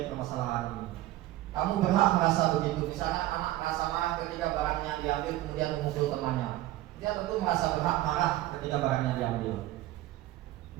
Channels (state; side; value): quieter; left; 15.6 dB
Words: permasalahan ini. Kamu berhak merasa begitu. Misalnya anak merasa marah ketika barangnya diambil kemudian memukul temannya. Dia tentu merasa berhak marah ketika barangnya diambil.